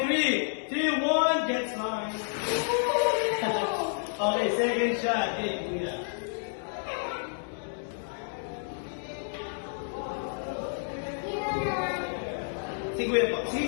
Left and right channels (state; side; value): silent; right; digital silence